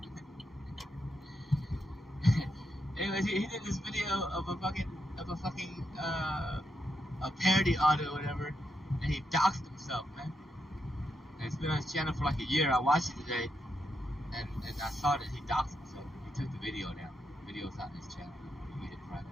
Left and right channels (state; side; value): normal; both; correlation 0.82